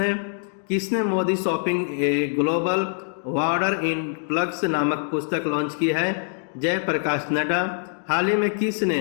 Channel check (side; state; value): right; silent; 62 dB below the other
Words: किसने Modi shopping a global वार्डर in plugs नामक पुस्तक लॉन्च की है? जयप्रकाश नड्डा। हाल ही में